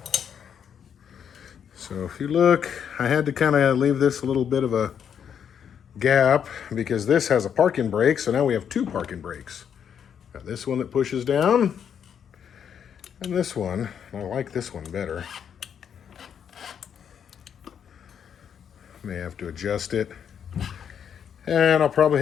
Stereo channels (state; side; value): quieter; right; 8.1 dB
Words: So if you look, I had to kind of leave this a little bit of a gap because this has a parking brake, so now we have two parking brakes. Got this one that pushes down, and this one. I like this one better. May have to adjust it. And I'll probably